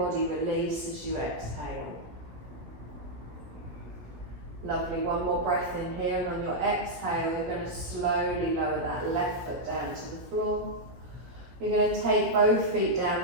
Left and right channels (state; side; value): late; left; 17 ms